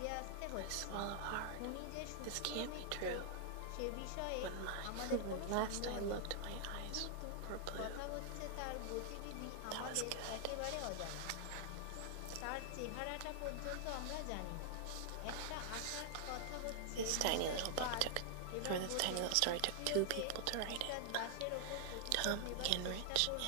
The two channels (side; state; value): both; different; correlation -0.01